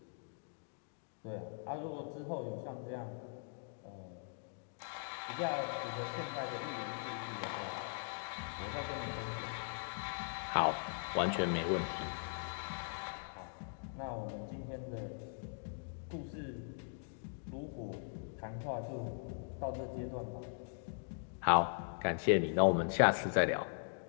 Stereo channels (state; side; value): silent; right; digital silence